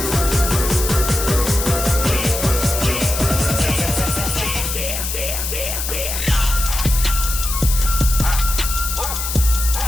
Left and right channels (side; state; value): left; noise; hiss, 4 dB below the sound